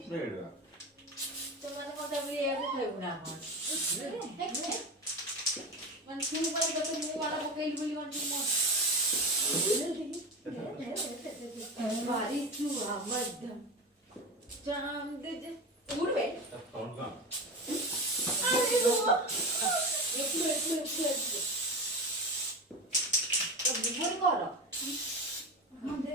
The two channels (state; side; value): normal; both; correlation 0.24